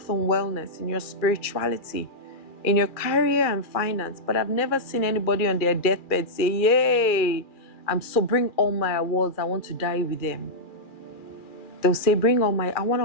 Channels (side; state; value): right; late; 2.4 ms